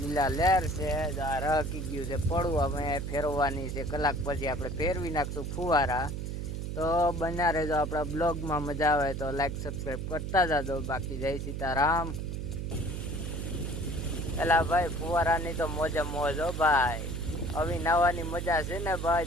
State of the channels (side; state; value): right; noise; hum, 4 dB below the sound